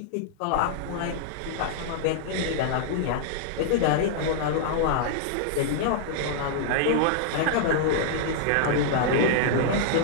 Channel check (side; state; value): both; different; correlation -0.01